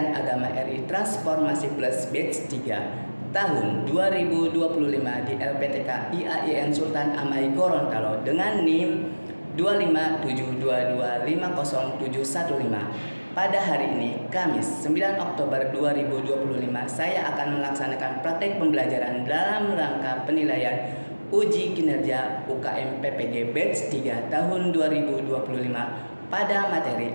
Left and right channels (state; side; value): inverted; both; correlation -1.00